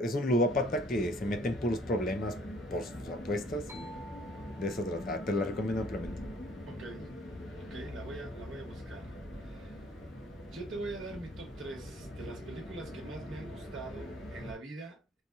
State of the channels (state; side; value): normal; both; correlation 0.57